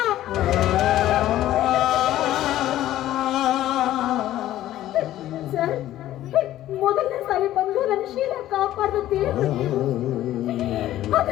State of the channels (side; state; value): right; quieter; 13.7 dB